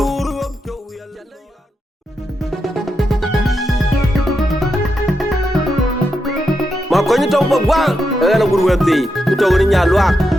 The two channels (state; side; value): normal; both; correlation 0.85